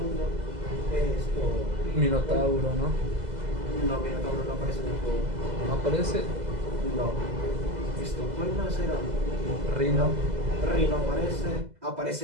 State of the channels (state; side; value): late; left; 2.0 ms